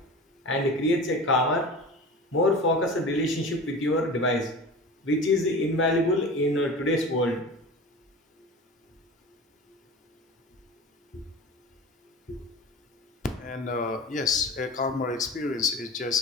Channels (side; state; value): both; normal; correlation 0.34